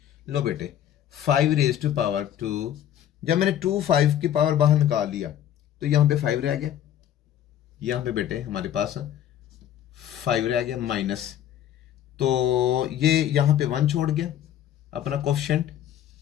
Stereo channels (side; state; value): right; quieter; 10.9 dB